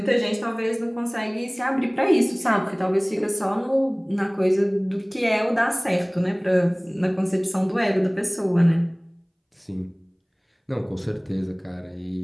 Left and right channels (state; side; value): identical; both; correlation 1.00